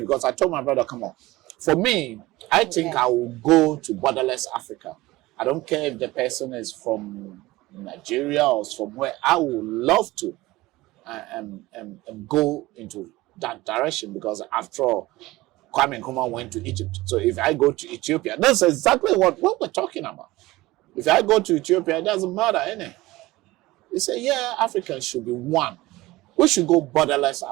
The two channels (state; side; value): quieter; left; 19.1 dB